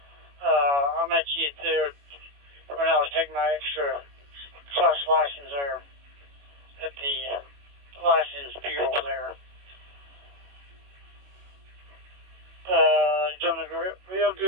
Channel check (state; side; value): late; left; 21 ms